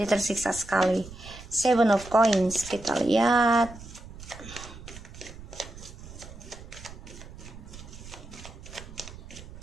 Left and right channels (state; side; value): noise; right; rumble, 15 dB below the sound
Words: tersiksa sekali. 7 of Coins, kita lihat.